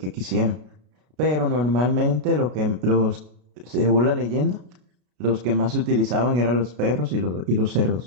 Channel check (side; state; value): left; late; 33 ms